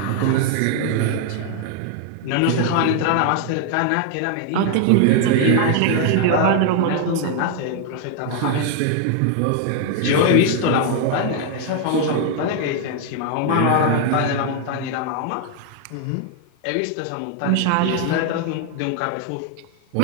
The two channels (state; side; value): different; both; correlation 0.00